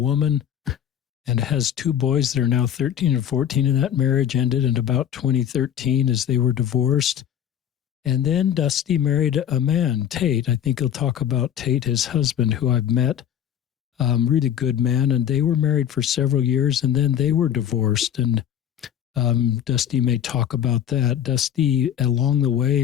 and has 2 boys that are now 13 and 14, and that marriage ended in about 2013 as they were divorced. And then Dusty married a man, Tate. I think he'll talk about Tate, his husband, who I've met. Really good man. And they were married for several years, and then they were divorced. And Dusty may talk about that. Dusty, along the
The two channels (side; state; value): right; quieter; 9.6 dB